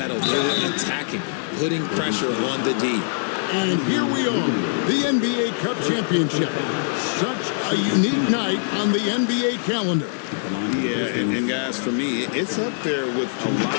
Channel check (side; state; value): right; silent; digital silence